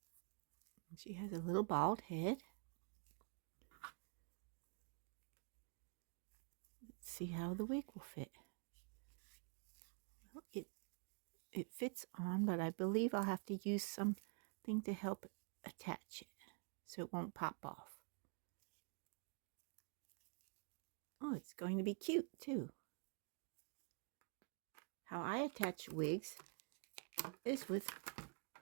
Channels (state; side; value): quieter; left; 39.8 dB